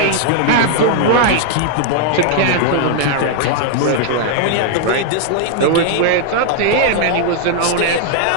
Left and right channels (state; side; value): different; both; correlation 0.00